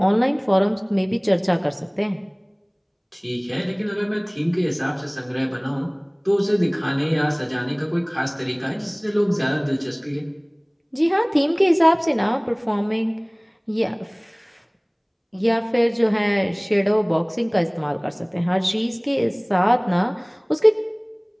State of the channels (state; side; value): identical; both; correlation 1.00